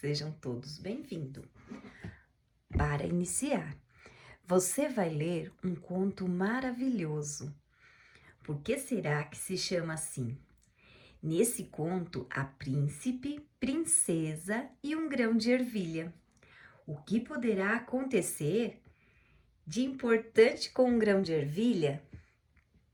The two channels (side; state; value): both; identical; correlation 1.00